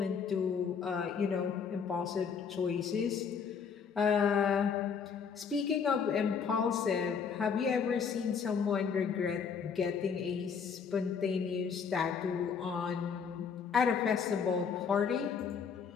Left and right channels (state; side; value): quieter; right; 6.4 dB